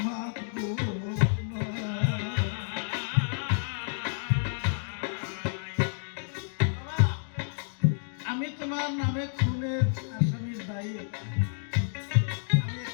মাপবো না। আমি তোমার নামে খুনের আসামির দায়ী আমি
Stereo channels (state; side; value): silent; right; digital silence